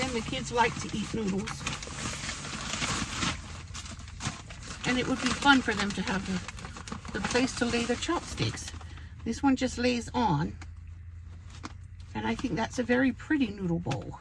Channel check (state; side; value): identical; both; correlation 1.00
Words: the kids like to eat noodles, and it would be fun for them to have the place to lay the chopsticks. This one just lays on, and I think that's a very pretty noodle bowl